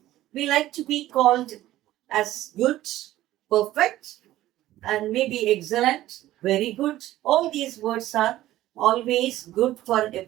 We like to be called as good, perfect, and maybe excellent, very good. All these words are always good for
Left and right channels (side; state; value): left; quieter; 14.9 dB